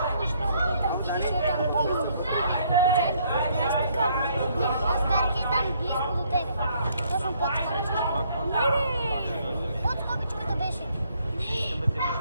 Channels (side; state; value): both; inverted; correlation -0.67